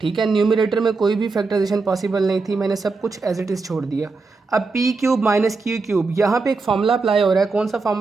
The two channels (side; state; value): left; quieter; 4.1 dB